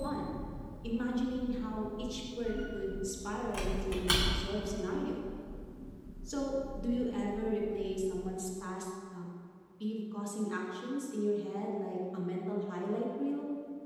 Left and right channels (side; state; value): both; identical; correlation 1.00